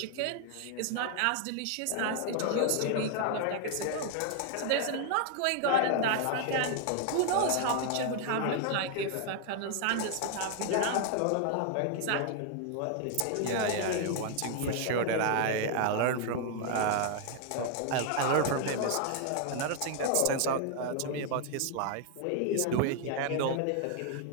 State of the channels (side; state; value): both; different; correlation 0.00